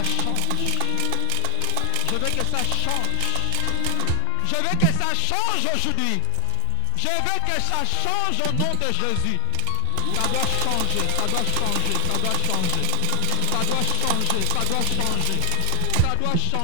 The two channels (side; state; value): both; different; correlation 0.01